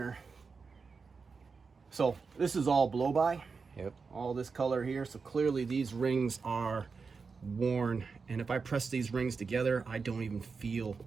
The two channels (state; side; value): quieter; left; 4.9 dB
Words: So this is all blow-by. Yep. All this color here. So clearly these rings are worn. And if I press these rings together, I don't even feel